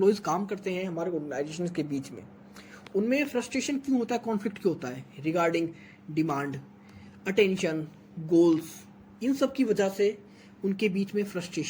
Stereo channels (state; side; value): identical; both; correlation 1.00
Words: काम करते हैं हमारे ऑर्गेनाइजेशन के बीच में, उनमें फ्रस्ट्रेशन क्यों होता है, कॉन्फ्लिक्ट क्यों होता है, रिगार्डिंग डिमांड, अटेंशन, गोल्स, इन सब की वजह से उनके बीच में